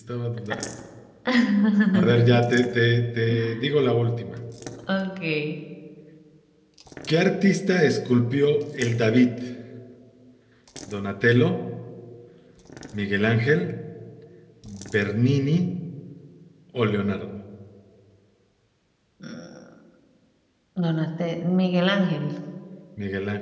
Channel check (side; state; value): both; identical; correlation 1.00